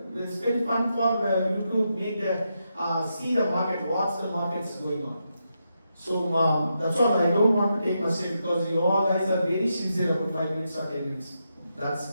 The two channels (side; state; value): both; inverted; correlation -0.84